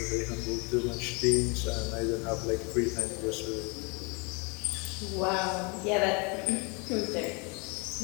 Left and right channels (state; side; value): quieter; right; 31.2 dB